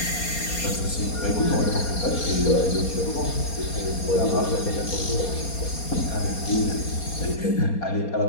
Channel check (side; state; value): right; late; 4.2 ms